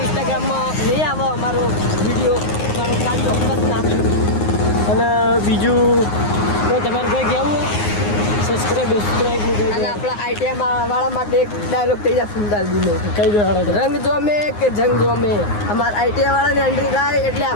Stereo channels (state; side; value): late; right; 9.6 ms